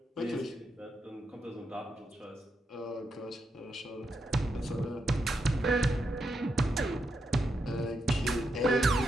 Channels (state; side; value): normal; both; correlation 0.83